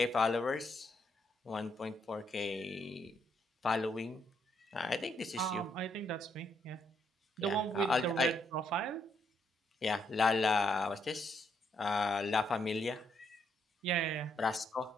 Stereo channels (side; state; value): both; normal; correlation 0.74